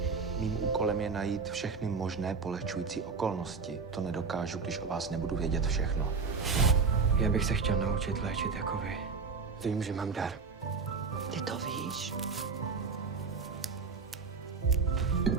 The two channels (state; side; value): quieter; left; 4.9 dB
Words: Mým úkolem je najít všechny možné polehčující okolnosti. To nedokážu, když o vás nebudu vědět všechno. Já bych se chtěl naučit léčit jako vy. Vím, že mám dar. Ty to víš?